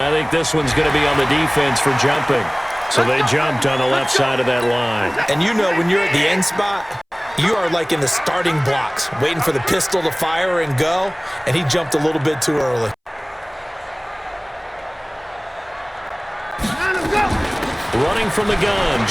think this one's going to be on the defense for jumping. So they jumped on the left side of that line. And you know when you're at the end spot, you are like in the starting blocks, waiting for the pistol to fire and go, and he jumped a little bit too early. Running from the gun,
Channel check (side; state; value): both; identical; correlation 1.00